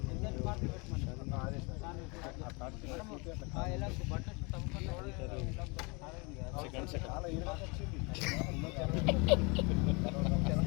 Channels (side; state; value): right; quieter; 29.7 dB